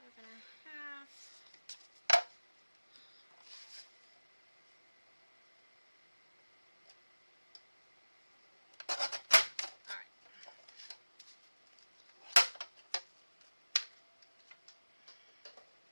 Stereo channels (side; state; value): both; inverted; correlation -1.00